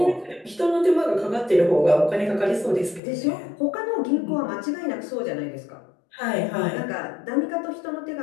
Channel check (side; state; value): right; drops out; at 3.0 s